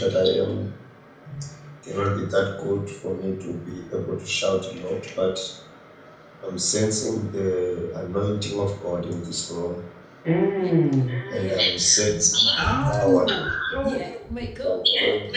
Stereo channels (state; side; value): identical; both; correlation 1.00